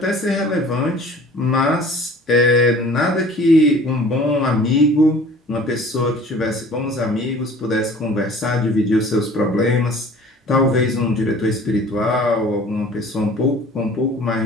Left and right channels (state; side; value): normal; both; correlation 0.48